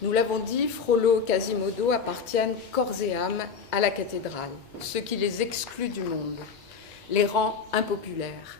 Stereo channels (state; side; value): quieter; right; 5.7 dB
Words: Nous l'avons dit, Frollo et Quasimodo appartiennent corps et âme à la cathédrale, ce qui les exclut du monde, les rend impopulaires.